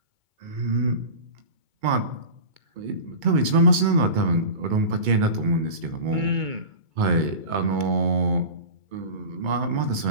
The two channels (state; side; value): late; left; 2.2 ms